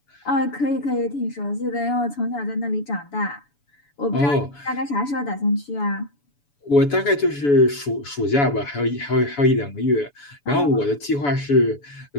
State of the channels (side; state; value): right; late; 7.0 ms